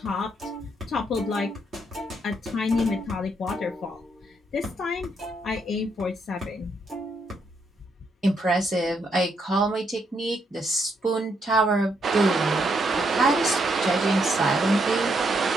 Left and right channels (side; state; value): both; normal; correlation 0.76